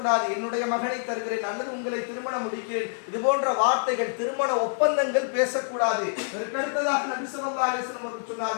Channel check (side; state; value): right; silent; digital silence